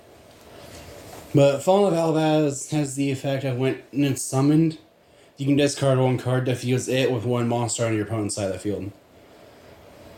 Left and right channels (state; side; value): identical; both; correlation 1.00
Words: But Fallen of Albaz has the effect of when it's summoned, you can discard 1 card to fuse it with 1 monster on your opponent's side of the field.